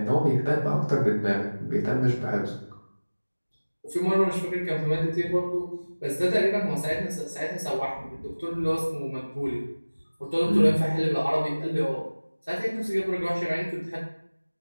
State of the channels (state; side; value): inverted; both; correlation -1.00